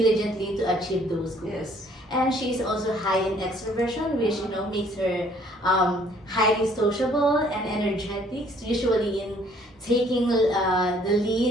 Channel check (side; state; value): both; normal; correlation 0.60